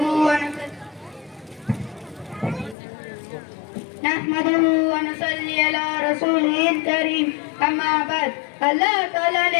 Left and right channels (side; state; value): right; drops out; at 2.8 s